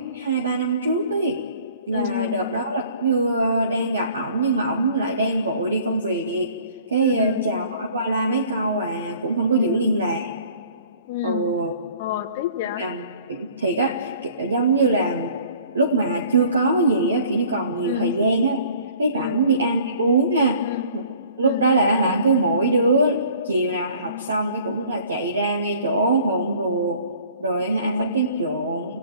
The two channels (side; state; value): both; inverted; correlation -0.52